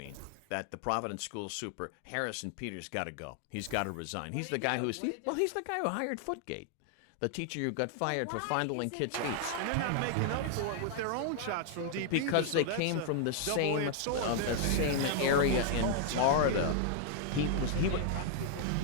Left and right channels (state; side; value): different; both; correlation -0.01